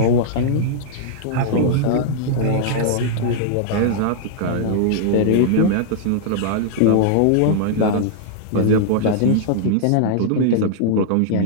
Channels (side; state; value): both; different; correlation -0.01